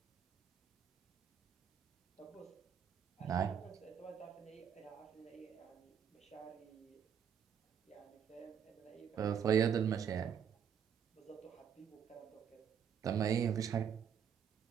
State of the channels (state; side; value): quieter; left; 8.0 dB